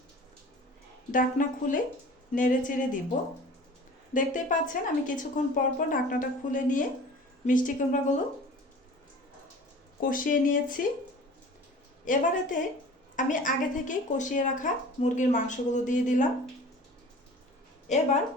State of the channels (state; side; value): normal; both; correlation 0.42